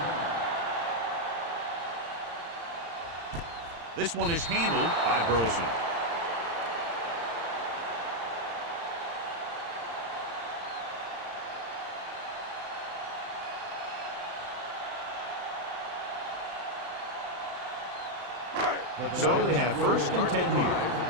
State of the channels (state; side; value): late; left; 35 ms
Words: This one is handled by Burleson. So they have first and 10 here.